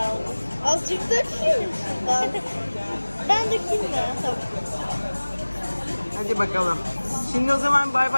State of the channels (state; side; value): inverted; both; correlation -1.00